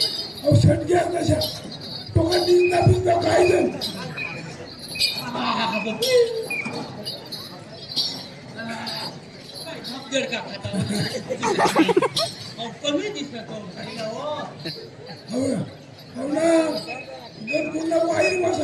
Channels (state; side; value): identical; both; correlation 1.00